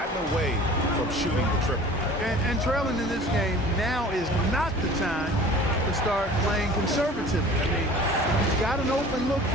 away from shooting the triple. And trailing in this game, now is not the time to start playing conservative. I mean, you've got an open look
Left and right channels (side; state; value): both; normal; correlation 0.44